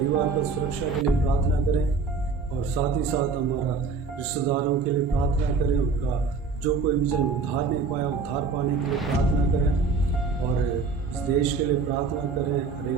का सुरक्षा के लिए प्रार्थना करें। और साथ ही साथ हमारा रिश्तेदारों के लिए प्रार्थना करें, उनका जो कोई भी जन उद्धार नहीं पाया, उद्धार पाने के लिए प्रार्थना करें। और इस देश के लिए प्रार्थना करें, हर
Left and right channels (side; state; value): left; quieter; 4.6 dB